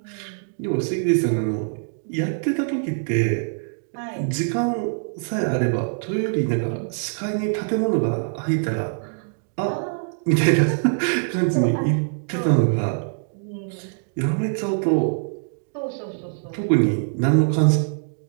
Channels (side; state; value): left; silent; digital silence